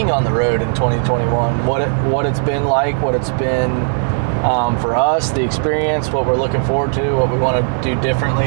on the road in 2021, what it's been like, what it's been for us, the experience, what we're looking forward to, what we want to do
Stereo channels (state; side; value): silent; left; digital silence